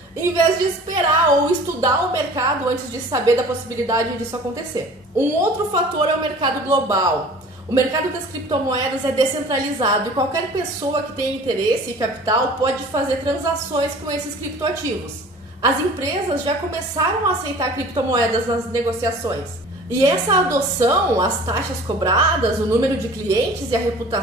em vez de esperar ou estudar o mercado antes de saber da possibilidade disso acontecer. Um outro fator é o mercado global. O mercado das criptomoedas é descentralizado e qualquer pessoa que tenha interesse e capital pode fazer transações com esses criptoativos. As empresas já começaram a aceitar criptomoedas nas negociações. E essa adoção, as taxas cobradas, o número de clientes e a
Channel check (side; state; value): both; normal; correlation 0.45